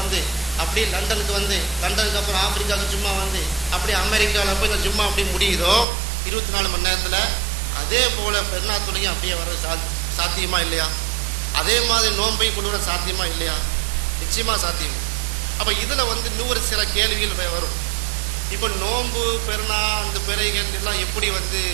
வந்து அப்படியே லண்டனுக்கு வந்து லண்டனுக்கு அப்புறம் ஆப்பிரிக்காவுக்கு ஜும்மா வந்து அப்படியே அமெரிக்காவில் போய் இந்த ஜும்மா அப்படி முடியுதோ 24 மணி நேரத்தில், அதே போல் பெருநாள் தொழுகையும் அப்படியே வர சாத்தியமா இல்லையா? அதே மாதிரி நோன்பையும் கொண்டு வர சாத்தியமா இல்லையா? நிச்சயமாக சாத்தியம். அப்போ இதில் வந்து இன்னொரு சில கேள்விகள் வரும். இப்போ நோன்பு பெருநா அந்த பிறைகள் எல்லாம் எப்படி வந்து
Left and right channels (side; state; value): left; drops out; at 5.9 s